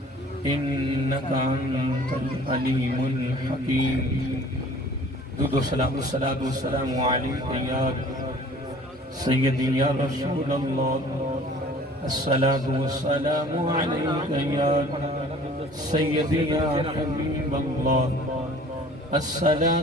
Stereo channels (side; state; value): both; normal; correlation 0.50